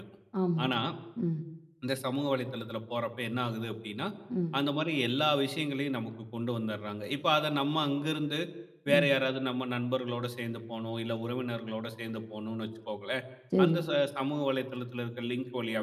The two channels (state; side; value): identical; both; correlation 1.00